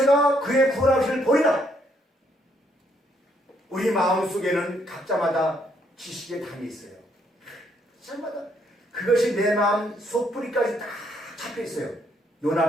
그의 구원하심을 보리라. 우리 마음속에는 각자마다 지식의 담이 있어요. 각자마다 그것이 내 마음 속뿌리까지 다 잡혀있어요.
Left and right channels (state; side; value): normal; both; correlation 0.71